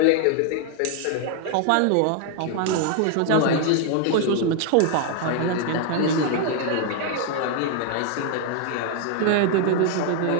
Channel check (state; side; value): different; both; correlation 0.00